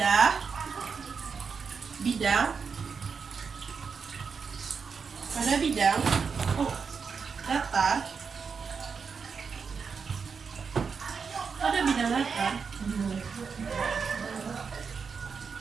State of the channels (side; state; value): left; quieter; 5.7 dB